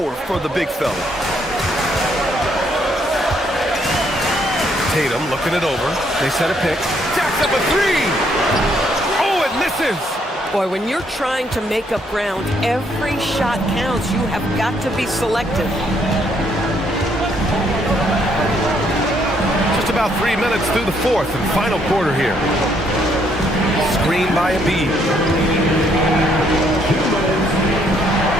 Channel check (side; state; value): both; normal; correlation 0.70